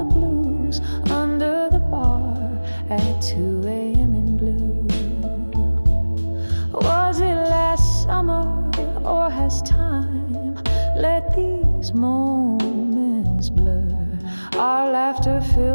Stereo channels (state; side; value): inverted; both; correlation -1.00